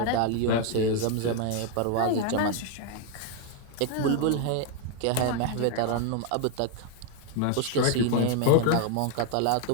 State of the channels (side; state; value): both; different; correlation 0.01